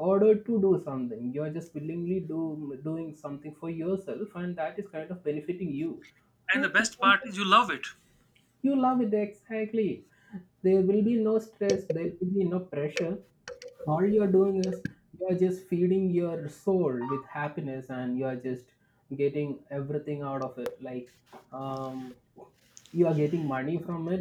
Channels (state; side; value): identical; both; correlation 1.00